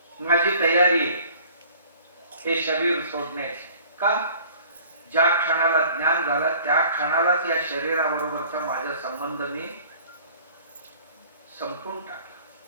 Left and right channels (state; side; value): inverted; both; correlation -0.50